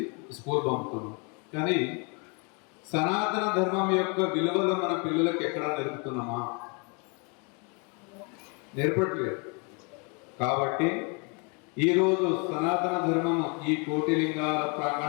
స్కూల్ పంపుతున్నాం. కానీ సనాతన ధర్మం యొక్క విలువలు మన పిల్లలకు ఎక్కడా నేర్పుతున్నామా? నేర్పట్లేదు. కాబట్టి ఈరోజు సనాతన ధర్మము ఈ కోటి లింగాల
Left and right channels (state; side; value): quieter; right; 33.9 dB